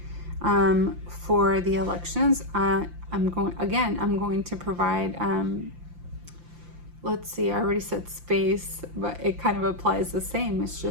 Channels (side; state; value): left; late; 5.8 ms